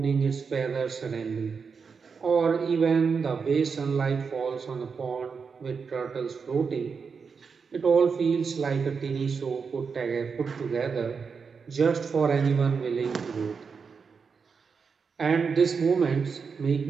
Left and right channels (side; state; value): left; quieter; 5.6 dB